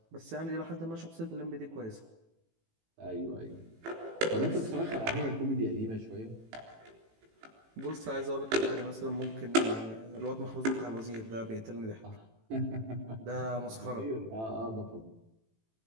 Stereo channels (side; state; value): left; late; 18 ms